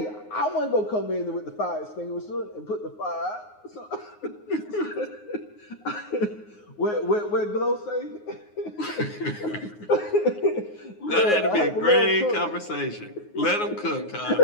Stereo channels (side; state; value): right; late; 9.5 ms